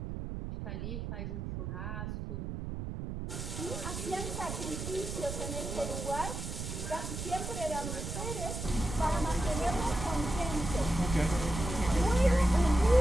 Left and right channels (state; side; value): noise; right; rumble, 5 dB below the sound